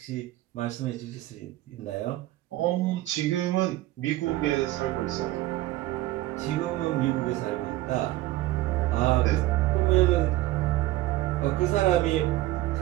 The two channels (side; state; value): left; quieter; 16.5 dB